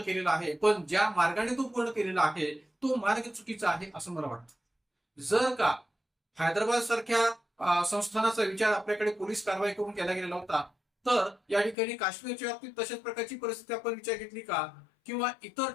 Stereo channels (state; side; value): drops out; right; at 11.8 s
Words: आहे. पण ज्या मार्गाने तो पूर्ण केलेला आहे तो मार्ग चुकीचा आहे असं मला वाटतं. जर का हैदराबाद सारख्या संस्थानाचा विचार आपल्याकडे पोलीस कारवाई करून केला गेलेला होता, तर या ठिकाणी काश्मीरच्या बाबतीत तशाच प्रकारची परिस्थिती आपण विचार घेतली का? किंवा इतर